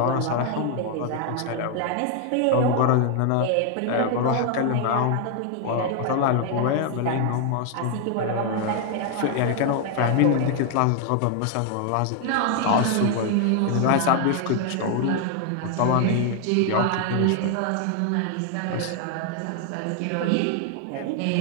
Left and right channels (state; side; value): different; both; correlation 0.00